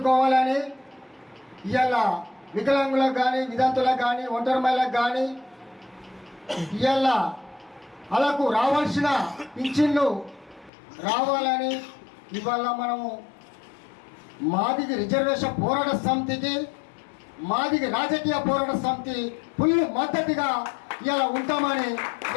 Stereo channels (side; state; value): right; drops out; at 10.7 s